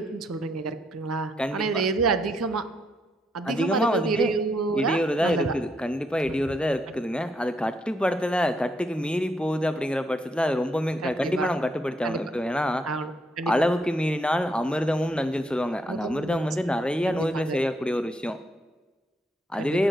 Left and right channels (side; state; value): both; normal; correlation 0.76